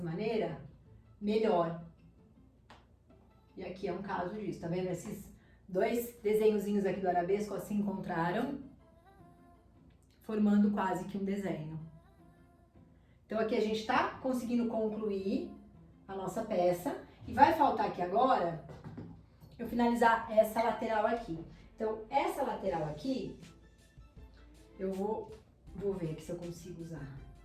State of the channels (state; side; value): identical; both; correlation 1.00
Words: maneira, melhor. E aqui é um caso disso, tá vendo? Esses dois desenhozinhos aqui do arabesco se encontraram, formando quase que um desenho. Então aqui a gente tá conseguindo concluir a nossa peça e vai faltar aqui agora eu finalizar essa lateral aqui. Então essa lateral aqui eu vou ver aqui se eu consigo usar